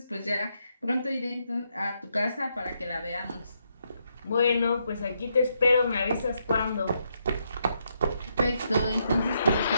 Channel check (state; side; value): inverted; both; correlation -0.78